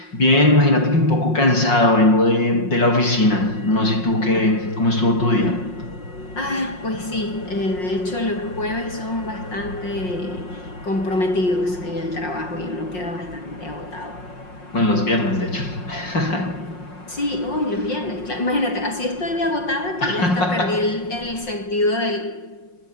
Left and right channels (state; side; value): late; right; 5.5 ms